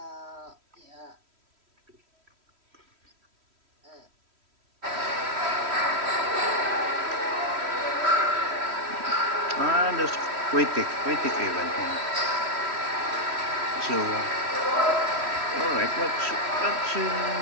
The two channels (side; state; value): left; late; 3.1 ms